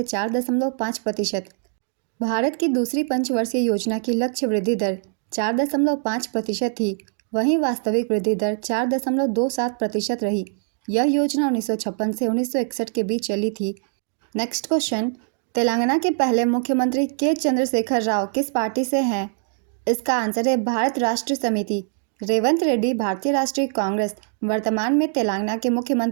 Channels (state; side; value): silent; left; 63 dB below the other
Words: 4.5%। भारत की दूसरी पंचवर्षीय योजना की लक्ष्य वृद्धि दर 4.5% थी। वहीं वास्तविक वृद्धि दर 4.27% रही। यह योजना 1956 से 1961 के बीच चली थी। नेक्स्ट क्वेश्चन, तेलंगाना के पहले मुख्यमंत्री के चंद्रशेखर राव किस पार्टी से हैं। इसका आंसर है भारत राष्ट्र समिति। रेवंत रेड्डी भारतीय राष्ट्रीय कांग्रेस वर्तमान में तेलंगाना के